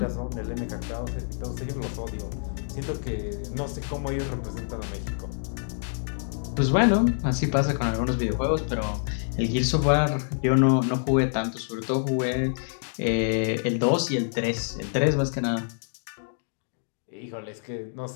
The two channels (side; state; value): right; silent; digital silence